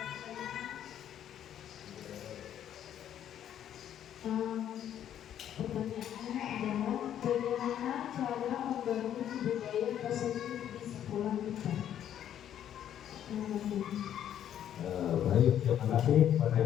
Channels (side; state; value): right; quieter; 10.4 dB